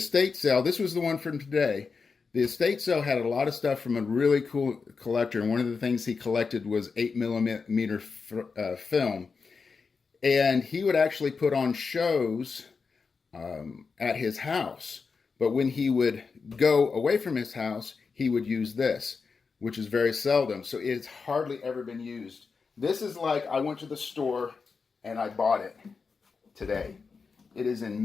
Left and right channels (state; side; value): quieter; right; 5.0 dB